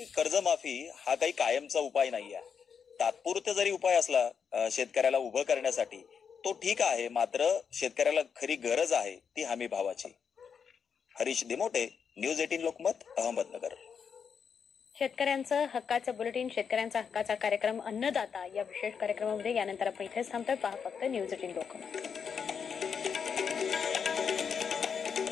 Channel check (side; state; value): right; quieter; 6.6 dB